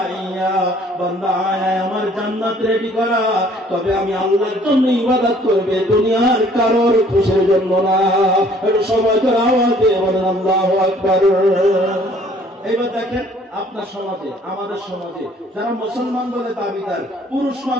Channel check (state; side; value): normal; both; correlation 0.58